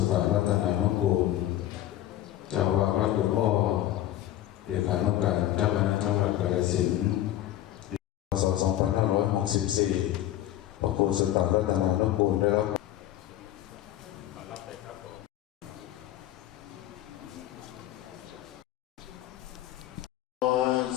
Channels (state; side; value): quieter; right; 13.3 dB